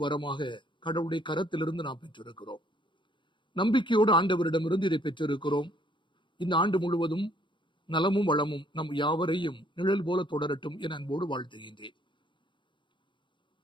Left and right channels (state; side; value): late; right; 0.23 ms